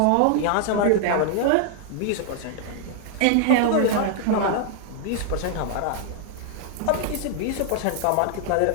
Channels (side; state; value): both; different; correlation 0.00